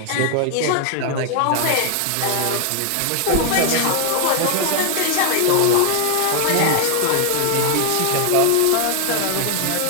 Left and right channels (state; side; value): different; both; correlation 0.00